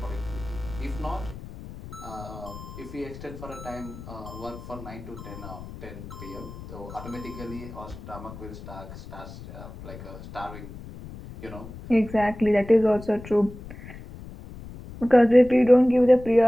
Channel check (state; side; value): noise; left; rumble, 14 dB below the sound